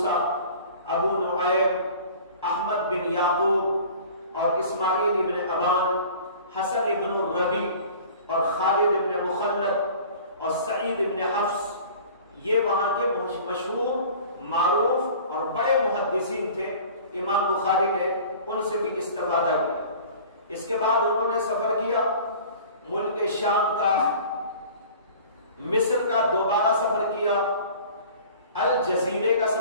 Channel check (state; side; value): inverted; both; correlation -0.44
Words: ابو نعیم، احمد بن یعقوب اور اسماعیل ابن ابان، حسن ابن الربی اور خالد ابن مخلد اور سعید ابن حفص، یہ وہاں کے مشہور، معروف اور بڑے محدثین تھے۔ امام بخاری نے ان سے بھی استفادہ کیا۔ اس کے بعد انہوں نے سفر کیا ملک شام کا، مصر کا دوبارہ سفر کیا، الجزیرے کا